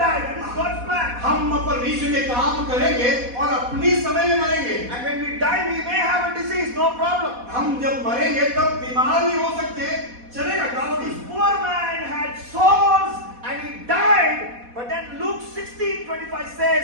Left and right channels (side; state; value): left; late; 4.1 ms